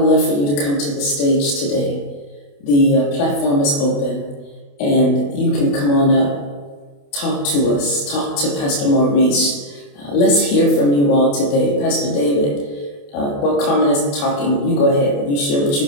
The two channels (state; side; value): late; right; 28 ms